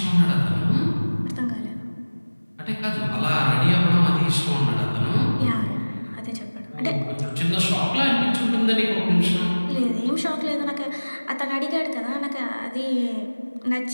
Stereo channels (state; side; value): inverted; both; correlation -1.00